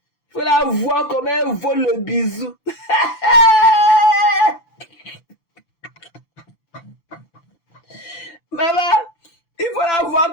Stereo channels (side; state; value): right; late; 6.9 ms